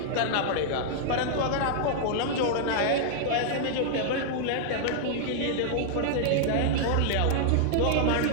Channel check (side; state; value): both; different; correlation -0.01